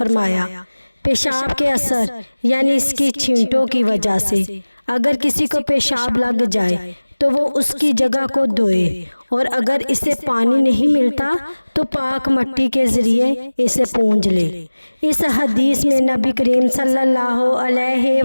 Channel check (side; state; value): both; inverted; correlation -1.00